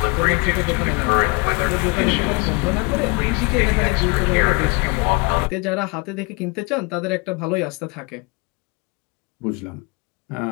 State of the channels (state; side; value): quieter; right; 29.2 dB